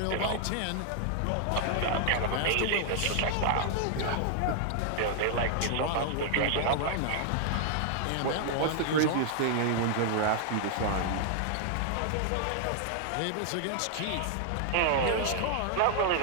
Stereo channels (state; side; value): different; both; correlation -0.01